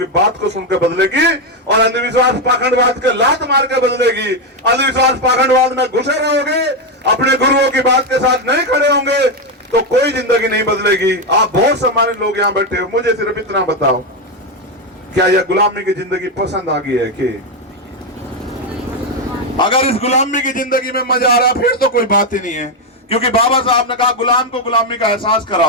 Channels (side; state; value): both; normal; correlation 0.05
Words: बात को सुनकर बदलेगी, और अंधविश्वास पाखंडवाद के लात मार के बदलेगी। अंधविश्वास पाखंडवाद में घुसे रहोगे, अपने गुरुओं की बात के साथ नहीं खड़े होंगे तो कोई जिंदगी नहीं बदलेगी। आप बहुत सम्मानित लोग यहाँ बैठे हो, मुझे सिर्फ इतना बताओ, क्या यह गुलामी की जिंदगी पसंद आ गई है? कि अगर इस गुलामी की जिंदगी में मजा आ रहा फिर तो कोई बात ही नहीं है, क्योंकि बाबा साहब ने कहा गुलाम को गुलामी का एहसास